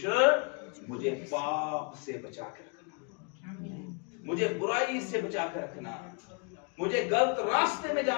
मुझे पाप से बचा कर रखना, मुझे बुराई से बचा कर रखना, मुझे गलत रास्ते में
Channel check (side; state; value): right; quieter; 35.7 dB